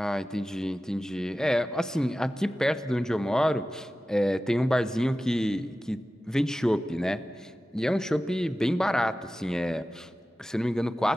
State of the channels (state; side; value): normal; both; correlation 0.95